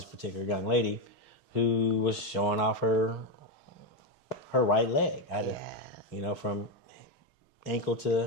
particular young lady who was showing off her right leg. From ankle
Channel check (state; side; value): late; right; 6.4 ms